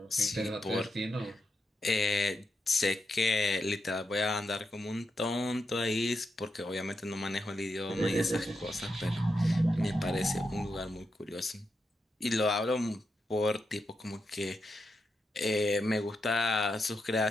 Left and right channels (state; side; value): normal; both; correlation 0.85